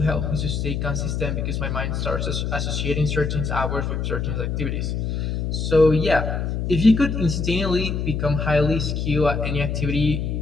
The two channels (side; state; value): left; noise; hum, 1 dB below the sound